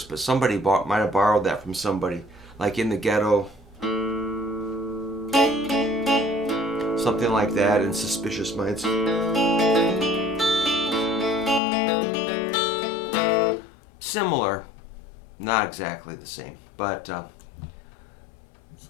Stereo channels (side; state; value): right; drops out; at 11.6 s